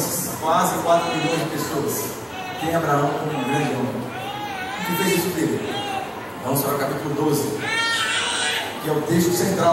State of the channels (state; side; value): identical; both; correlation 1.00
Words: quase 4 bilhões de pessoas tem Abraão como um grande homem. O que fez isso dele? Vamos para o capítulo 12, que é o texto